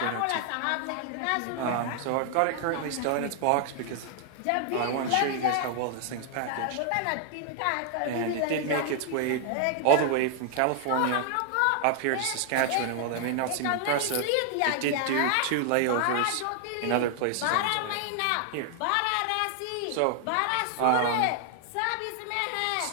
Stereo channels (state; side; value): different; both; correlation 0.00